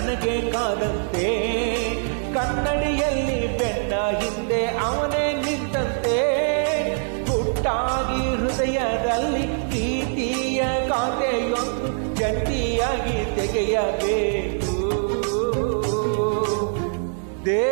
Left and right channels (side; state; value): left; silent; digital silence